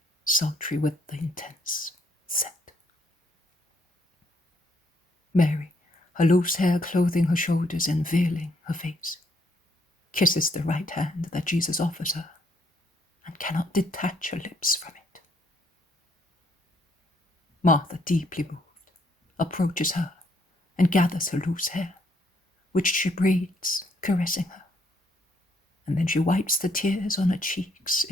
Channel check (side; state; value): both; normal; correlation 0.71